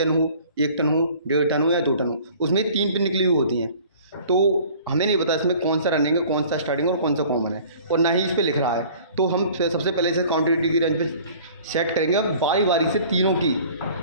हो, 1 टन हो, 1.5 टन हो या 2 टन हो, उसमें 3 पिन निकली हुई होती हैं। तो हमें नहीं पता इसमें कौन सा रनिंग है, कौन सा स्टार्टिंग और कौन सा कॉमन है, और ना ही इस पर लिख रहा है। तो हम सबसे पहले इसे कॉन्टिन्यूटी की रेंज पे सेट करेंगे। बारी बारी से तीनों की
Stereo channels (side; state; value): both; inverted; correlation -0.49